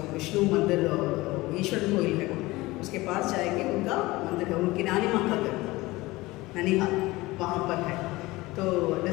विष्णु मंदिर और ईश्वर कोइल है ना, उसके पास जाएंगे, उनका मंदिर है, उनकी नानी माँ का घर ननिहाल वहाँ पर है। तो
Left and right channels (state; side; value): quieter; right; 20.3 dB